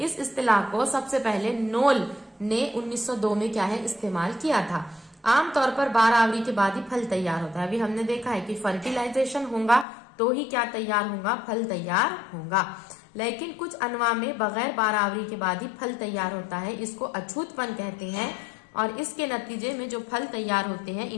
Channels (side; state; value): right; drops out; at 9.9 s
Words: इस्तिलाह को सबसे पहले नोल ने 1902 में क्या है इस्तेमाल किया था। आमतौर पर 12 आवरी के बाद ही फल तैयार होता है। अभी हमने देखा है कि फर्टिलाइजेशन होगा तो ही क्या तैयार होगा, फल तैयार होगा, लेकिन कुछ अनवा में बगैर 12 आवरी के बाद ही फल तैयार होता है, इसको अछूतपन कहते हैं। और इसके नतीजे में जो फल तैयार होते हैं